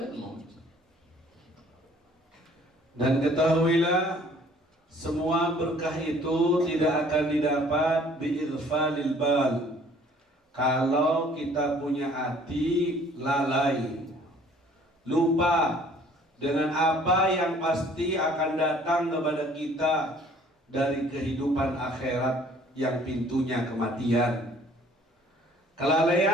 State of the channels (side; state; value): both; normal; correlation 0.56